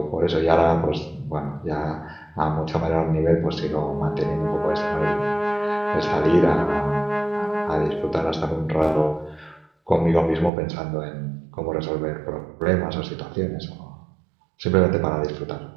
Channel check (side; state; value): left; drops out; at 10.5 s